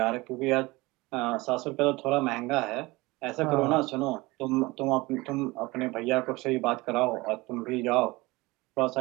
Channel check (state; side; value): quieter; left; 22.3 dB